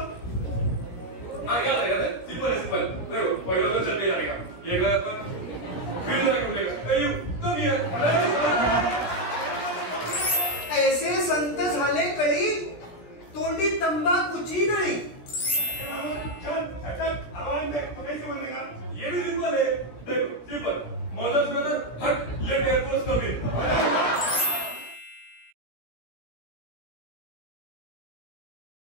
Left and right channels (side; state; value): right; late; 17 ms